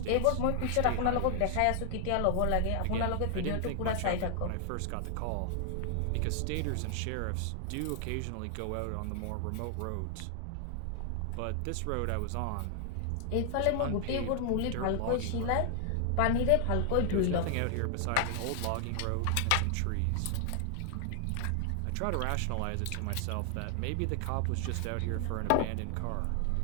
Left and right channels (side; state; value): both; different; correlation 0.00